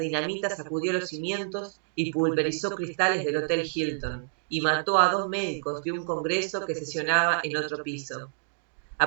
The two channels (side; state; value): left; silent; digital silence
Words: dinamita sacudió los cimientos y pulverizó cristales del Hotel Hilton, y mató a 2 médicos de un congreso que sesionaba en otro piso.